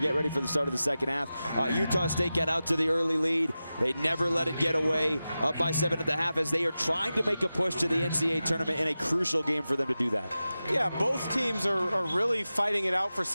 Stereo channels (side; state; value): both; inverted; correlation -0.94